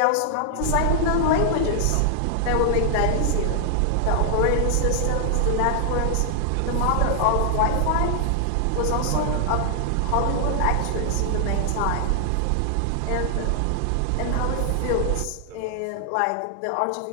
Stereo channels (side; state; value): both; different; correlation 0.00